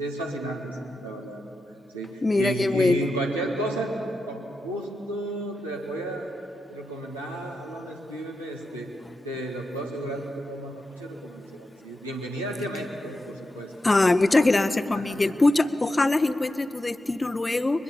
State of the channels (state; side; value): normal; both; correlation 0.88